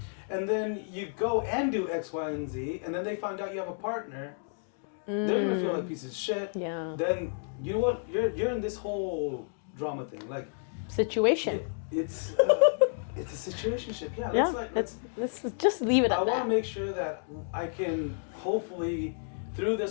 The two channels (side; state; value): right; silent; digital silence